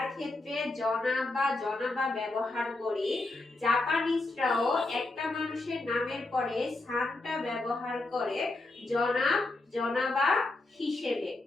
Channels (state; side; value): quieter; right; 3.0 dB